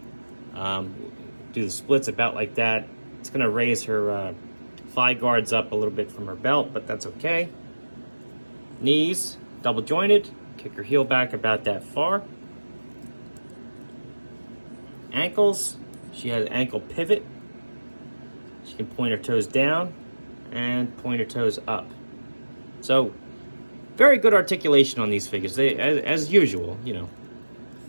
Do the splits about like that. It's going to raise her thigh guards up a little bit from her belt, but that's okay. Knees, double jointed. Kick her heel back about that far. Ankles, she has an ankle pivot. She can point her toes down and point her toes up. So, very good articulation on these figures. They, as usual, you know.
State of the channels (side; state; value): both; inverted; correlation -1.00